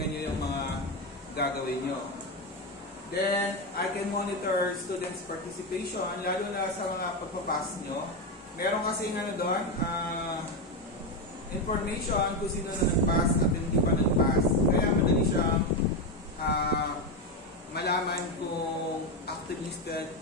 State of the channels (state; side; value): normal; both; correlation 0.11